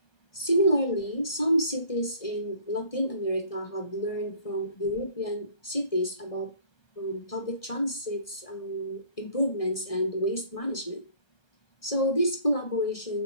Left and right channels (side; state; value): right; late; 1.7 ms